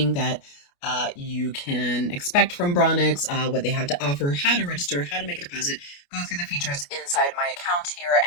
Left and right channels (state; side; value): late; right; 28 ms